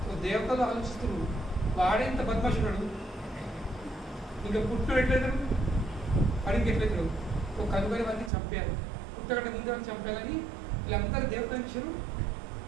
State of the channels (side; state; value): left; drops out; at 8.3 s